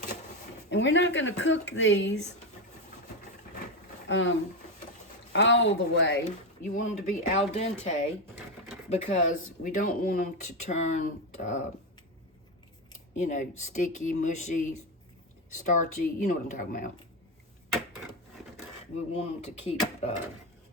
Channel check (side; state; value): both; normal; correlation 0.12